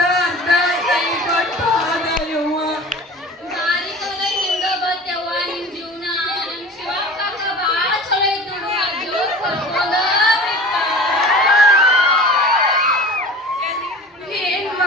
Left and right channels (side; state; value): both; normal; correlation 0.39